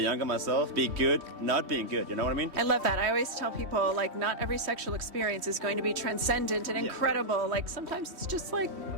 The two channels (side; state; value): left; late; 3.1 ms